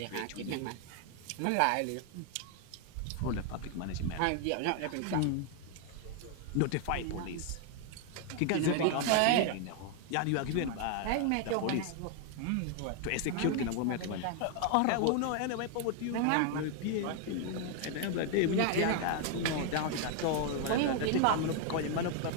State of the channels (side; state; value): both; different; correlation 0.00